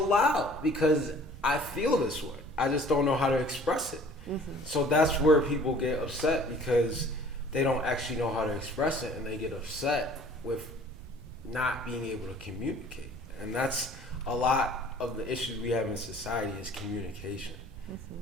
Because I feel this way. I just don't know how to express it. So that's where people get upset because they don't actually know how to express it, and they get upset with not being able to communicate. And that's a lot of the issues we have in society is communication.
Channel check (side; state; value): right; noise; rumble, 15 dB below the sound